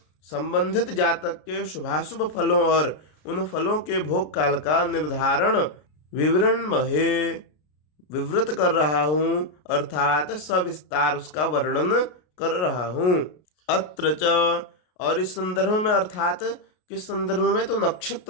संबंधित जातक के शुभाशुभ फलों और उन फलों के भोग काल का निर्धारण विवृण्महे विवृत कर रहा हूँ, अर्थात सविस्तार उसका वर्णन कर रहा हूँ। अत्र च, और इस संदर्भ में, अर्थात किस संदर्भ में, तो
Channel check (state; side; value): late; right; 33 ms